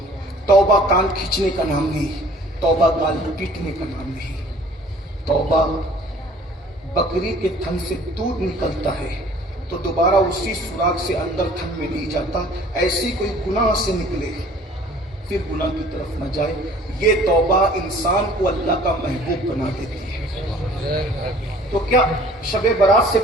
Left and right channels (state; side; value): normal; both; correlation 0.52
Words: तौबा कान खींचने का नाम नहीं, तौबा गाल पीटने का नाम नहीं। तौबा बकरी के थन से दूध निकलता है तो दोबारा उसी सुराख से अंदर थन में नहीं जाता, ऐसी कोई गुनाह से निकले फिर गुनाह की तरफ न जाए। ये तौबा इंसान को अल्लाह का महबूब बना देती है। तो क्या शबे बारात से